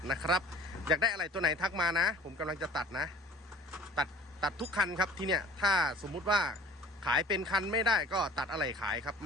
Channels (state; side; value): normal; both; correlation 0.47